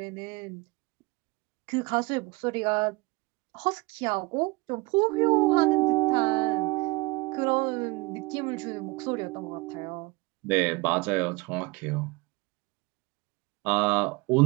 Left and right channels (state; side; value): quieter; left; 24.6 dB